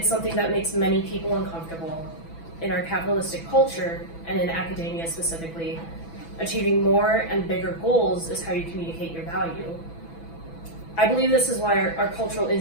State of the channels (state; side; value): late; right; 6.0 ms